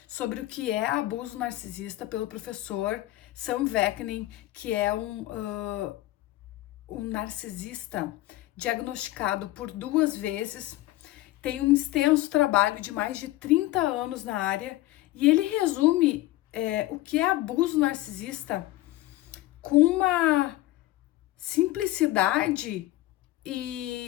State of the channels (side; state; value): right; quieter; 16.9 dB